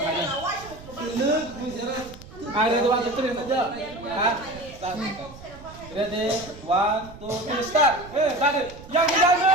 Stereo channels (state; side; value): noise; right; rumble, 17 dB below the sound